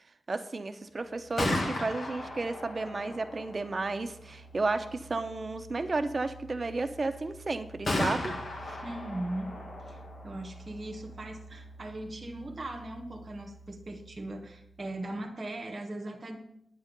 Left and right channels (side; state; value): both; normal; correlation 0.93